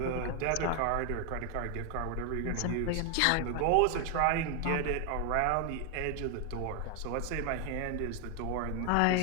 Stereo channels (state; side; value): different; both; correlation 0.00